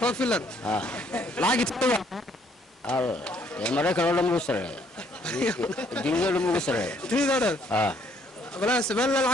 lacag tawa ya maraykan oo dhan ugu sareeyo dunida oo dhan ugu sareeyo dunida oo dhan wala sabal la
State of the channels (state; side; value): normal; both; correlation 0.66